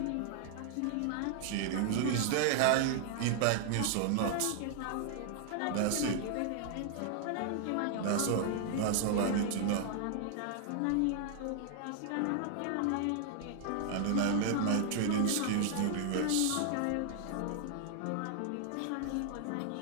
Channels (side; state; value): both; different; correlation 0.00